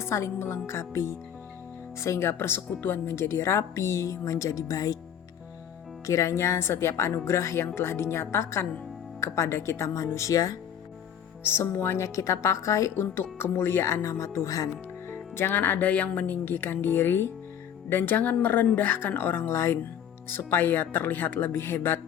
melengkapi, sehingga persekutuan menjadi rapi, menjadi baik. Kiranya setiap anugerah yang telah dinyatakan kepada kita manusia, semuanya kita pakai untuk kemuliaan nama Tuhan. Jangan ada yang meninggikan diri, dan jangan merendahkan orang lain, supaya terlihat lebih hebat,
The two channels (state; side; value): quieter; right; 9.1 dB